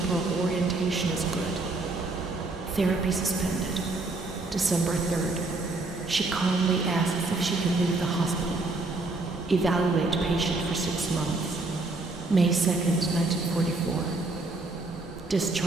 orientation is good. Therapy suspended. December 3rd. She calmly asks if she can leave the hospital. Evaluate patient for 6 months. May 2nd, 1944.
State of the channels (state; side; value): quieter; left; 3.2 dB